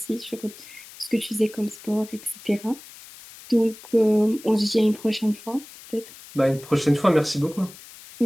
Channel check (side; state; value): left; noise; hiss, 19 dB below the sound